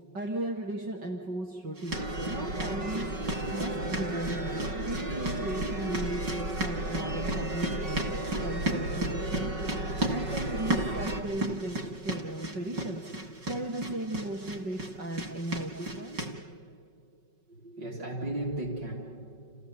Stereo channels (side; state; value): left; late; 5.4 ms